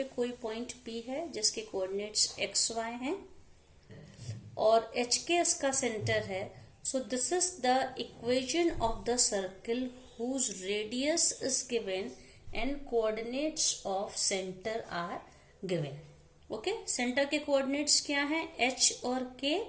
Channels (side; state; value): both; identical; correlation 1.00